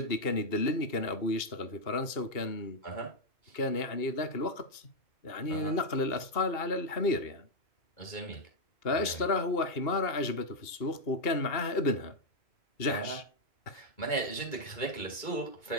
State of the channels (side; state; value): right; late; 2.8 ms